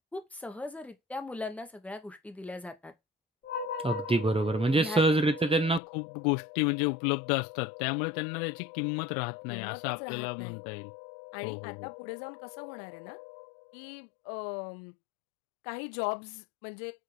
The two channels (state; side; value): drops out; right; at 5.8 s